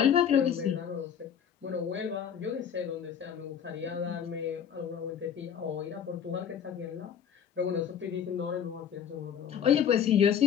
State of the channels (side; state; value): right; quieter; 8.4 dB